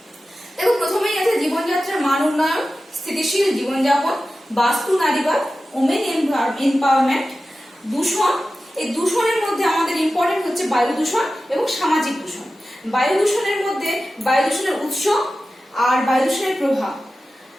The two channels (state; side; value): normal; both; correlation 0.94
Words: দেখো, প্রথমেই আছে জীবনযাত্রার মান উন্নয়ন, স্থিতিশীল জীবনযাপন, বাস্তু নারীবাদ, ওমেন এম্পাওয়ারমেন্ট, দূষণ। এই দূষণের মধ্যে আমাদের ইম্পর্টেন্ট হচ্ছে বায়ু দূষণ এবং সামাজিক দূষণ। বায়ু দূষণের মধ্যে বায়ু দূষণের উৎস আর বায়ু দূষণের প্রভাব।